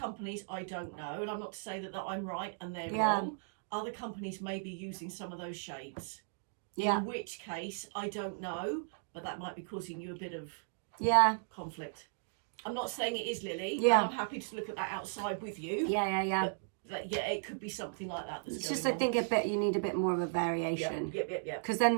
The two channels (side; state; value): left; silent; digital silence